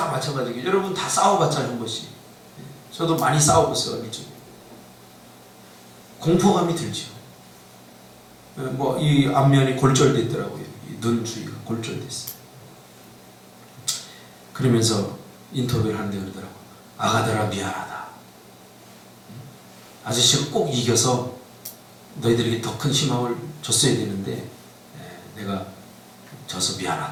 마찬가지겠죠. 여러분 다 싸워봤잖아요, 한 번씩. 저도 많이 싸워봤어요, 어릴 적에. 공포감이 들죠. 뭐 이 앞면이 골절됐더라고요. 눈 주위가 골절됐어요. 그러면서 인터뷰를 하는데 그러더라고요. 아가들아 미안하다. 아저씨가 꼭 이겨서 너희들에게 더 큰 희망을 줬어야 되는데 내가 져서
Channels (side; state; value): both; identical; correlation 1.00